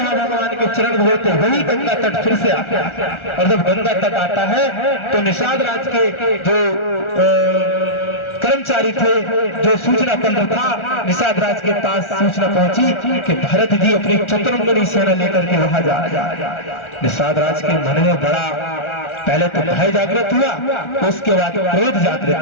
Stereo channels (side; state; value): right; late; 1.4 ms